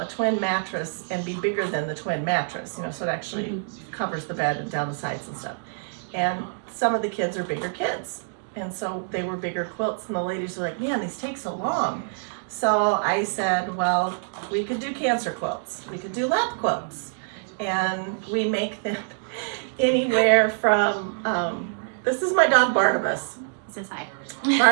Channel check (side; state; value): left; silent; digital silence